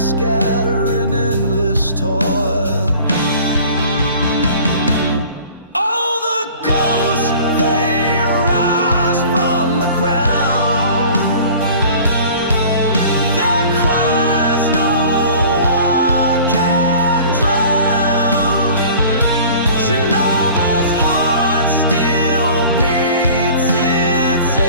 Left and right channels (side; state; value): both; inverted; correlation -0.45